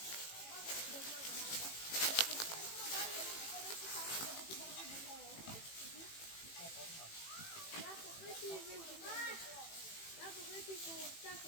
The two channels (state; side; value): late; right; 18 ms